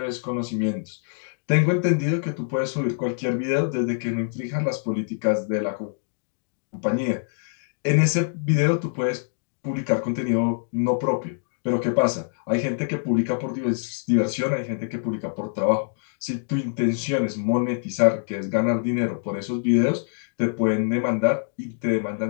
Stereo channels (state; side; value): silent; right; digital silence